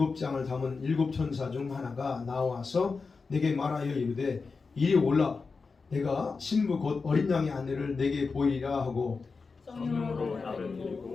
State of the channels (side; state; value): right; quieter; 4.6 dB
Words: 담은 7 천사 중 하나가 나와서 내게 말하여 이르되 이리 올라 내가 신부 곧 어린 양의 아내를 내게 보이리라 하고 성령으로 나를